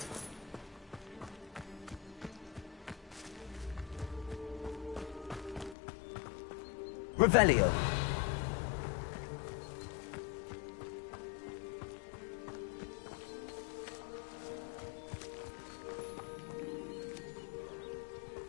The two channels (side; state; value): right; drops out; at 5.8 s